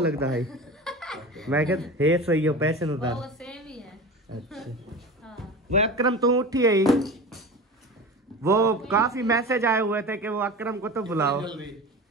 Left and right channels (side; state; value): both; normal; correlation 0.32